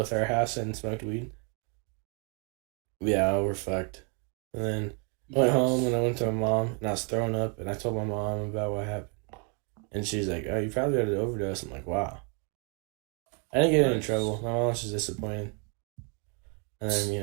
our halves and smoked weed. Yeah, we're fucked. And then I went home and I Yes. went to my mom and I was throwing up and I told my mom about what happened. And she's like, "Oh, you probably had an overdose." I'm like, "Wow." I didn't get in Nice. trouble. My mom was just disappointed. And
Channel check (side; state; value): left; quieter; 35.7 dB